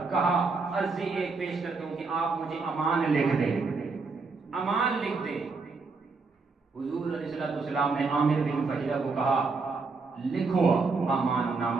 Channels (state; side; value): quieter; left; 4.3 dB